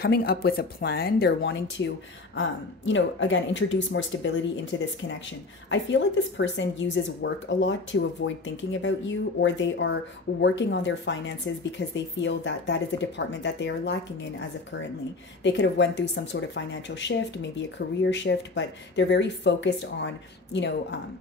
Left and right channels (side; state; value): right; quieter; 3.5 dB